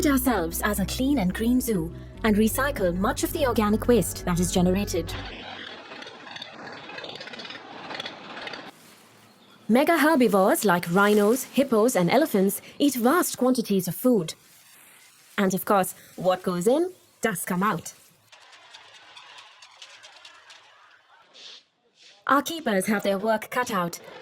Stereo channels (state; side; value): identical; both; correlation 1.00